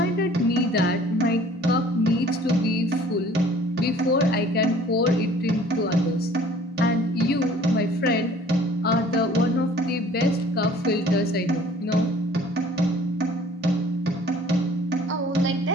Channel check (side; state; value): both; normal; correlation 0.52